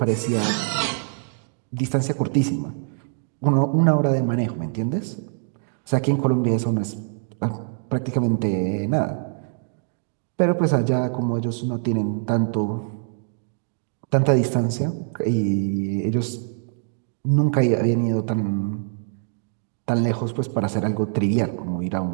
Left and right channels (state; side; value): silent; left; digital silence